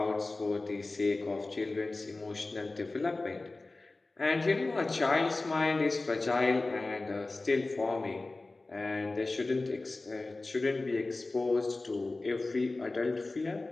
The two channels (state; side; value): quieter; right; 3.2 dB